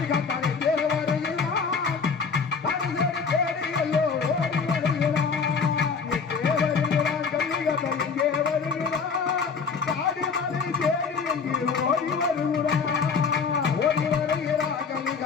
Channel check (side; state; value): right; quieter; 5.5 dB